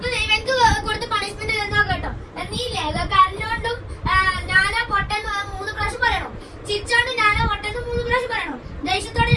ഇവർക്ക് കൊടുത്ത പണിഷ്മെന്റ് എന്താ കേട്ടോ? നീല്ലേ കരഞ്ഞോണ്ടും ഞാനാ പൊട്ടെന്ന് 3 പ്രാവശ്യം പറയണം. ചിരിച്ചോണ്ട് ഞാനാ പൊട്ടെന്ന് 3 പ്രാവശ്യം പറയണം. ദേഷ്യത്തോടെ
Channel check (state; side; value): identical; both; correlation 1.00